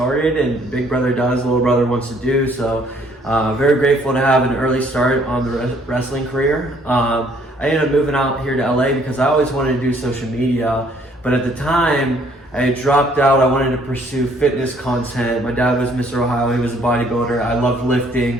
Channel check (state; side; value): normal; both; correlation 0.63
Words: and big brother does, little brother wants to do. So very grateful to have an early start on the wrestling career. I ended up moving out here to LA because I always wanted to do social media. But at the time, I had dropped out. I wanted to pursue fitness content. My dad was Mr. Ohio. He was a bodybuilder. I loved